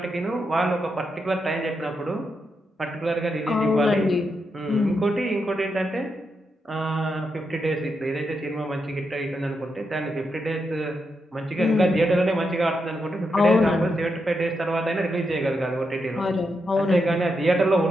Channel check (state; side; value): normal; both; correlation 0.84